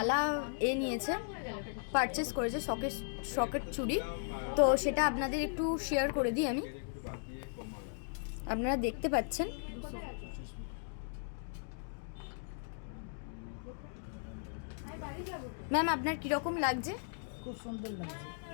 নিয়েছে, পারচেস করেছে সকেট চুড়ি। তো সেটা আপনাদের একটু শেয়ার করে দিই আমি। আপনারা দেখতে পাচ্ছেন ম্যাম, আপনার কীরকম লাগছে? খুব সুন্দর লাগছে।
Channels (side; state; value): right; silent; digital silence